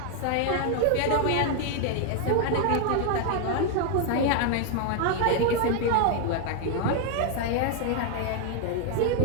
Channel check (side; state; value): both; different; correlation 0.00